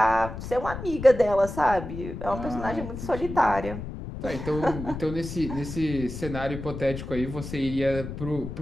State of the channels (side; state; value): left; noise; rumble, 8 dB below the sound